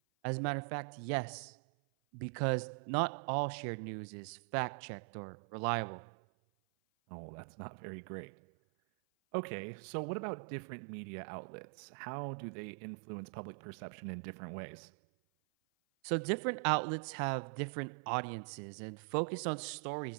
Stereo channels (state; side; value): silent; left; 50 dB below the other